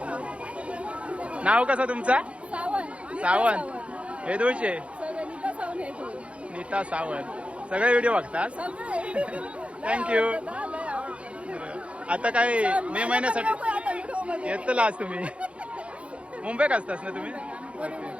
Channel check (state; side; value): late; left; 0.061 ms